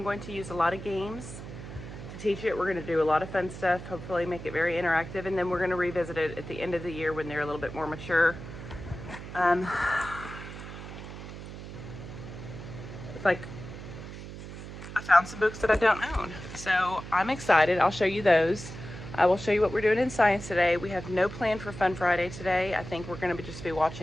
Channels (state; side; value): noise; right; hum, 11 dB below the sound